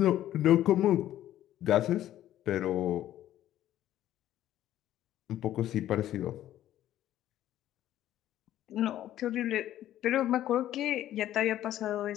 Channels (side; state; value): right; quieter; 12.8 dB